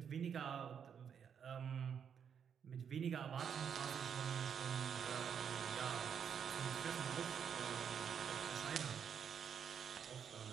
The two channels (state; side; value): quieter; left; 7.6 dB